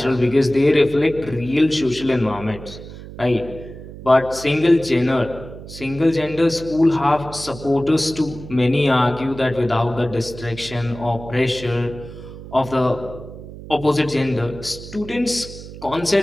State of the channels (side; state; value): right; noise; hum, 14 dB below the sound